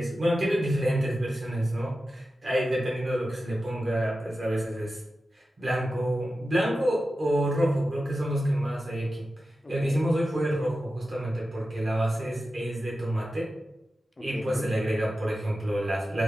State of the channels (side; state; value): both; normal; correlation 0.93